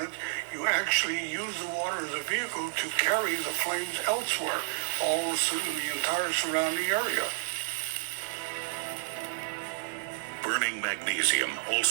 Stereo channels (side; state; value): left; silent; digital silence